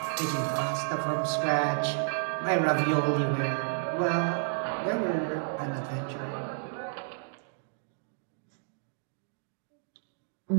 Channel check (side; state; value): left; silent; digital silence